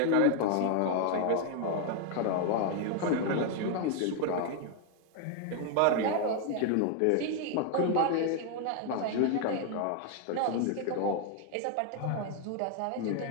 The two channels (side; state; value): both; different; correlation 0.00